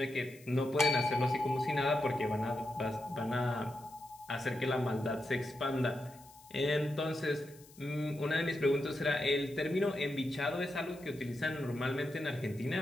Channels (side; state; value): left; noise; hiss, 23 dB below the sound